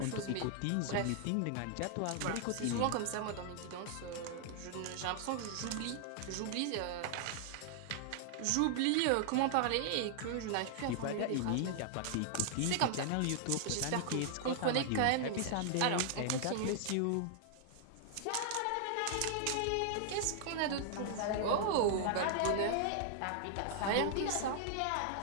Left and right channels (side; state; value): both; different; correlation 0.00